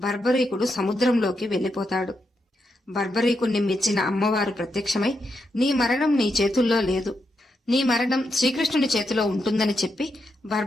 బర్బరీకుడు సముద్రంలోకి వెళ్లిపోతాడు. బర్బరీకుణ్ణి మెచ్చిన అమ్మవారు ప్రత్యక్షమై, నీ మరణం నీ చేతుల్లో లేదు, నీ మరణం శ్రీకృష్ణుడి చేతిలో ఉంటుందని చెప్పి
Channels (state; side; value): normal; both; correlation 0.83